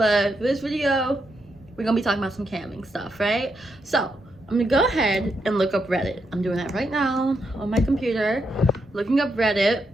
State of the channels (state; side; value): normal; both; correlation 0.81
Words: for this video, we're gonna be talking about some camming stuff, right? So I'm gonna go ahead and look up Reddit. I'm doing that right now on my computer, looking up Reddit.